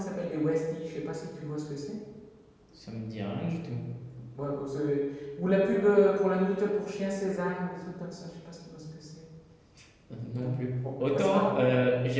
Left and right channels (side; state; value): both; identical; correlation 1.00